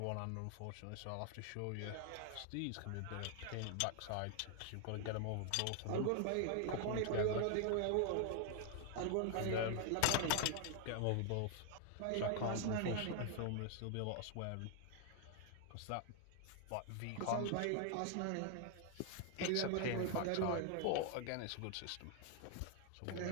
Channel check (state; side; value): different; both; correlation 0.00